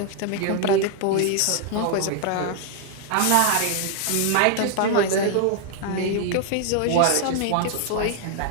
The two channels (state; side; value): different; both; correlation 0.00